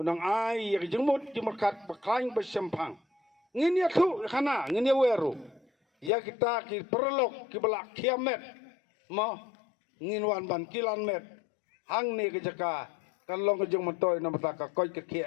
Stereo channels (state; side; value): drops out; right; at 6.1 s